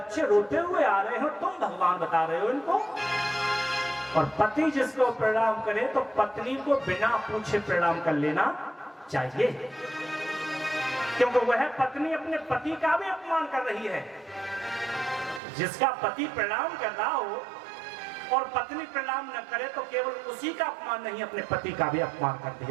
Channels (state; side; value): drops out; left; at 15.4 s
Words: रोते हुए आ रहे हो, तुम भगवान बता रहे हो इनको। और पति जिसको प्रणाम करे तो पत्नी को बिना पूछे प्रणाम कर लेना चाहिए, क्योंकि वह पत्नी अपने पति का भी अपमान कर रही है। जिसका पति प्रणाम कर रहा हो और पत्नी प्रणाम न करे तो केवल उसी का अपमान नहीं, अपने पति का भी अपमान कर